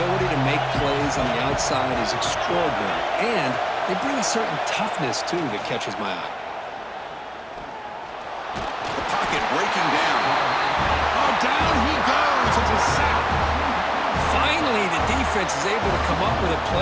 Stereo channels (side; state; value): both; identical; correlation 1.00